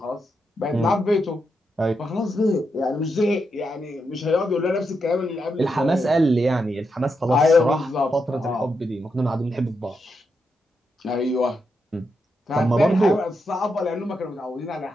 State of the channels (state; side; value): normal; both; correlation 0.84